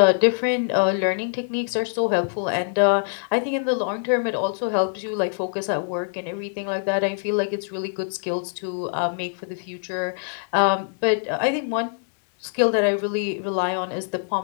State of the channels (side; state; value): right; silent; 62 dB below the other